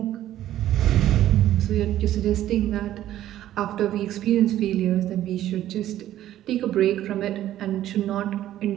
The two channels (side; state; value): left; quieter; 12.8 dB